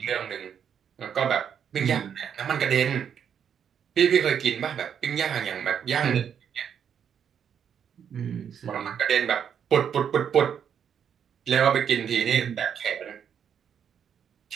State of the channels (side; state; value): left; quieter; 8.1 dB